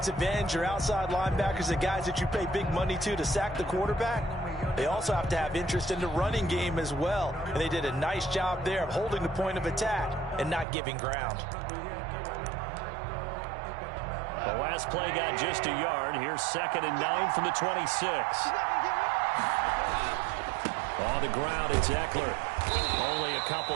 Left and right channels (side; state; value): left; drops out; at 10.7 s